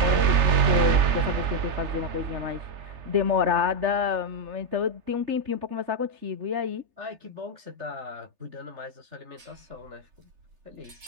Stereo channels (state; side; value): late; left; 3.3 ms